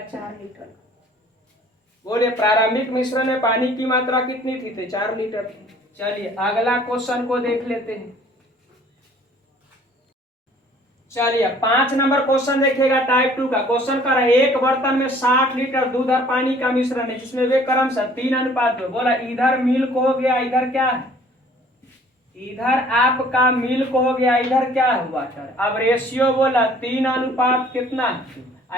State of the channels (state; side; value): normal; both; correlation 0.55